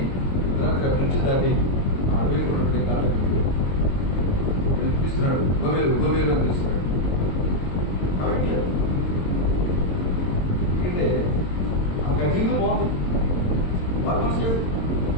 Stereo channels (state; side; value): late; right; 22 ms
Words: రాత్రి బ్రిడ్జ్ దాటి ఆ అడవి ఉన్నటువంటి కాళ్ళకి పిలుస్తున్నాడు. గోమెరు గోమెరు అని పిలుస్తున్నాడు. అవట్లేదు. ఎందుకంటే ఆమెకు ఆ జీవితం బాగుంది, వాళ్ళ మనసు లేదు.